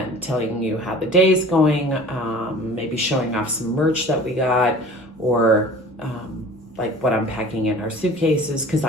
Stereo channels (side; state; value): both; normal; correlation 0.44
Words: telling you how the day's going, maybe showing off some merch that we got, or like what I'm packing in our suitcases, because